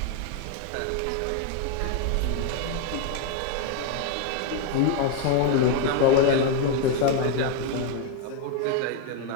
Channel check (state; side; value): different; both; correlation 0.01